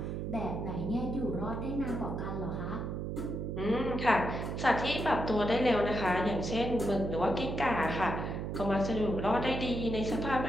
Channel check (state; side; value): noise; right; hum, 3 dB below the sound